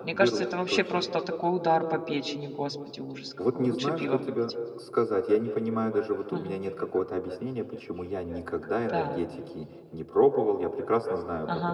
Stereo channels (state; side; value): identical; both; correlation 1.00